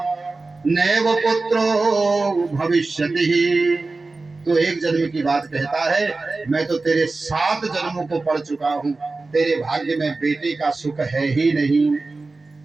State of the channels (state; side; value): quieter; left; 3.6 dB